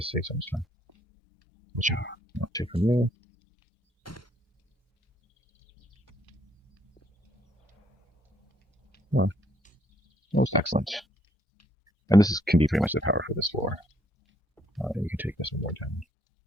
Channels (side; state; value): both; normal; correlation 0.69